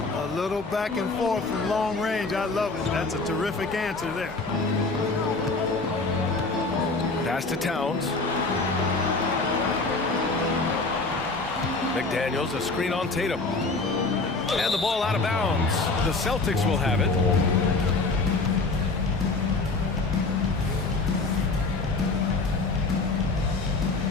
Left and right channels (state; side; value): quieter; right; 3.7 dB